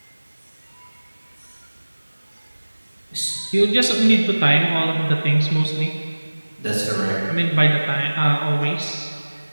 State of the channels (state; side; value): inverted; both; correlation -1.00